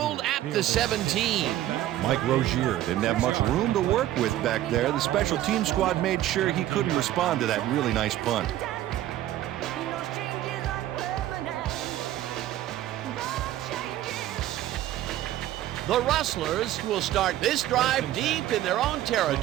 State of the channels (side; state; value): left; quieter; 13.5 dB